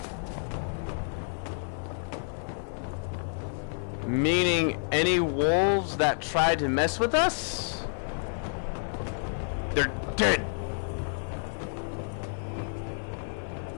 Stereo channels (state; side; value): silent; right; 58 dB below the other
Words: Meaning any wolves that tried to mess with us, they're dead.